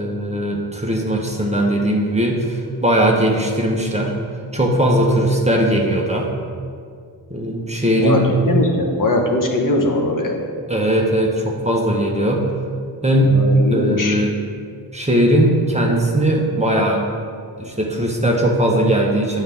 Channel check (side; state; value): both; normal; correlation 0.39